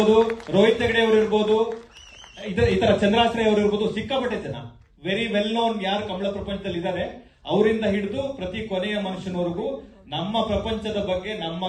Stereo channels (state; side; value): identical; both; correlation 1.00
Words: ರೋಹಿತ್ ಹೆಗಡೆ ಅವರು ಇರ್ಬೋದು, ಈ ತರ ಚಂದ್ರಾಶ್ರಯ ಅವರು ಇರ್ಬೋದು. ಸಿಕ್ಕಾಪಟ್ಟೆ ಜನ ವೆರಿ ವೆಲ್ ನೋನ್ ಯಾರು ಕಂಬಳ ಪ್ರಪಂಚದಲ್ಲಿ ಇದ್ದಾರೆ, ಅವರಿಂದ ಹಿಡಿದು ಪ್ರತಿ ಕೊನೆಯ ಮನುಷ್ಯನವರೆಗೂ ನಮ್ಮ ಪ್ರಪಂಚದ ಬಗ್ಗೆ, ನಮ್ಮ